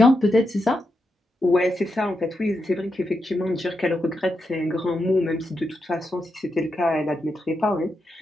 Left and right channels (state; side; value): normal; both; correlation 0.85